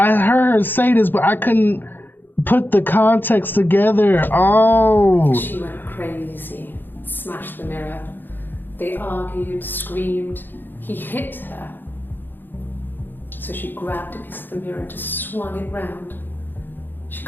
heard her say this, but I couldn't put the context together. Oh. She went crazy, smashed the mirror. They argued, screamed. He hit her. So she grabbed a piece of the mirror and just swung it round. She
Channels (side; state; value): right; late; 0.093 ms